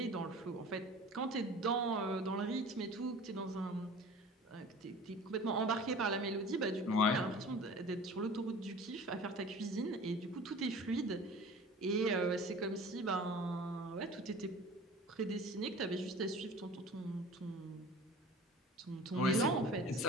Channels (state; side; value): normal; both; correlation 0.42